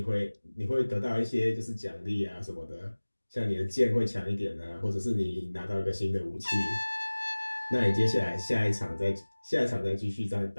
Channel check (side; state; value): both; inverted; correlation -1.00